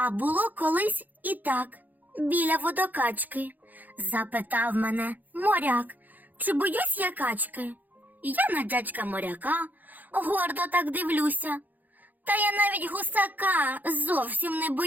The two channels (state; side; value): late; left; 0.084 ms